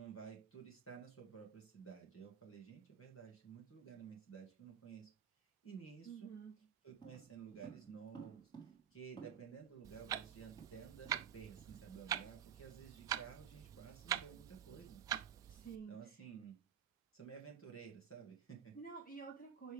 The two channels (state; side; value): quieter; left; 8.7 dB